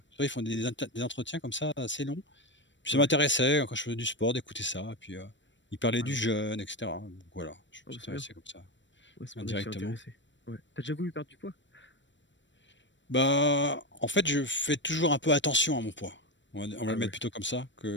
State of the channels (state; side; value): late; right; 0.54 ms